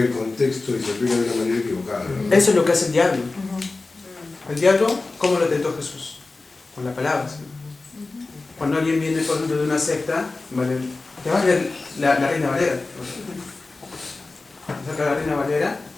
contexto y se aplica de una manera equivocada, ¿no? Eso es lo que hace el diablo. El diablo, ¿cómo lo tentó Jesús? Con la palabra. ¿Sí? Cuando alguien viene, por ejemplo, de una secta, ¿vale? Te va a leer la Reina Valera. Saca la Reina Valera,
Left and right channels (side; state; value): right; quieter; 3.5 dB